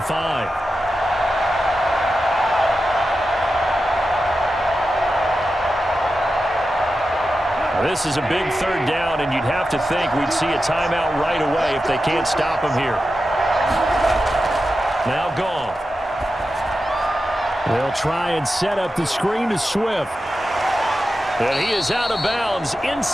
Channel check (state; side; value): normal; both; correlation 0.91